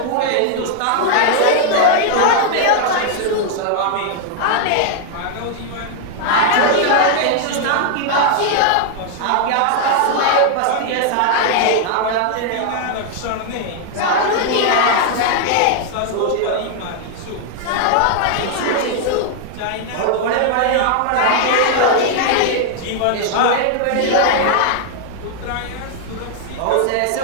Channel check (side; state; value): both; different; correlation 0.00